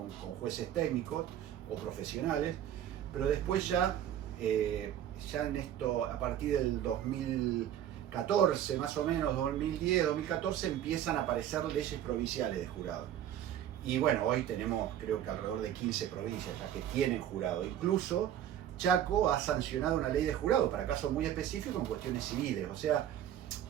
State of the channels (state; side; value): quieter; left; 10.8 dB